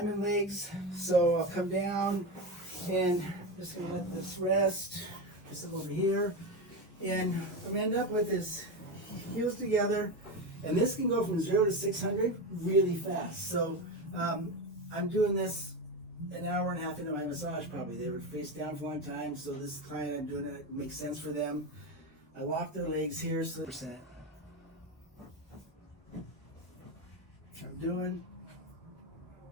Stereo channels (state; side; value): normal; both; correlation 0.17